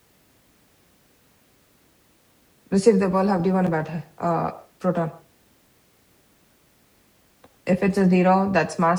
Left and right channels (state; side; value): identical; both; correlation 1.00